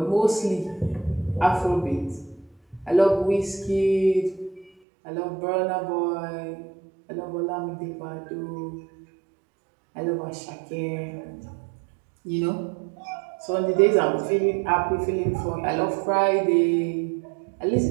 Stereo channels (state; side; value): drops out; left; at 4.7 s